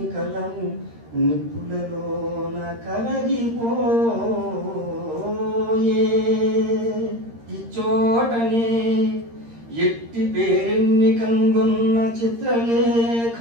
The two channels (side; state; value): left; late; 13 ms